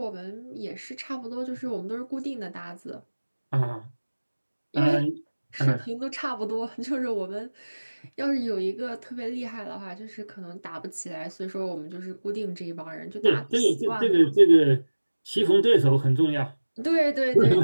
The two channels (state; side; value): inverted; both; correlation -1.00